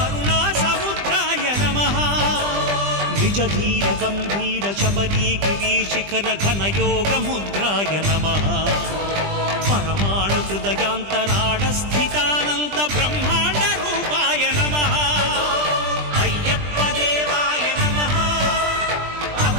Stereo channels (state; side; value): late; left; 20 ms